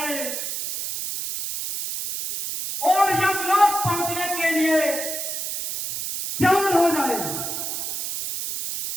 और यमलोक पहुंचने के लिए तैयार हो जाए।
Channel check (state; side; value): noise; right; hiss, 4 dB below the sound